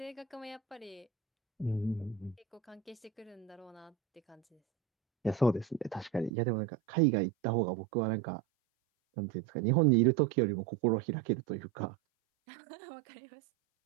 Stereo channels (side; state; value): left; drops out; at 6.3 s